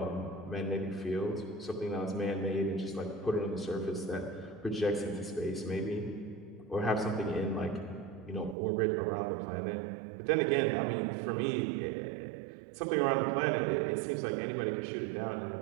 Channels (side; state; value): left; drops out; at 8.6 s